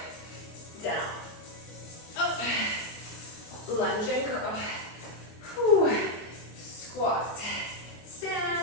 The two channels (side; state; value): right; late; 24 ms